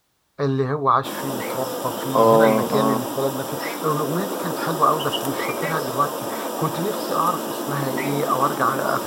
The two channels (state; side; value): identical; both; correlation 1.00